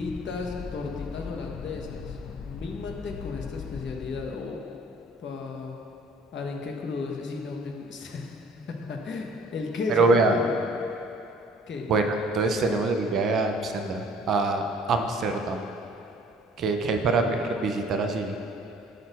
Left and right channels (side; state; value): both; normal; correlation 0.54